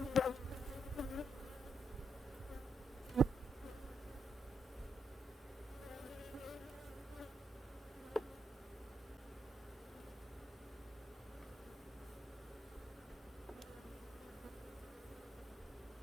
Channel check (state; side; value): normal; both; correlation 0.80